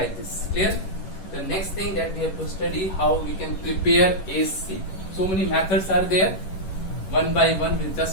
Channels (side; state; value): right; late; 11 ms